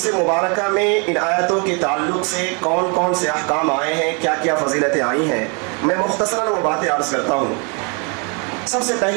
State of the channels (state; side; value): quieter; left; 34.9 dB